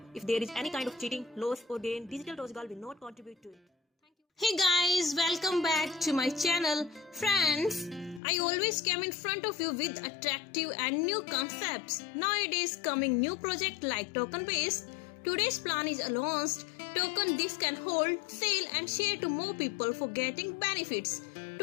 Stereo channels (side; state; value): right; drops out; at 8.2 s